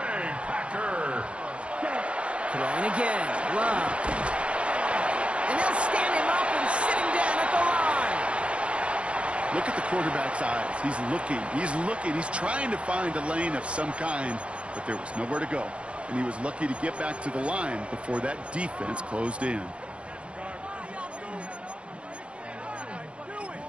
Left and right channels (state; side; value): late; left; 0.060 ms